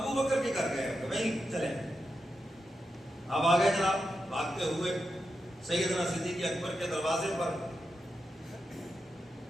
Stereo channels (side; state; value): both; normal; correlation 0.88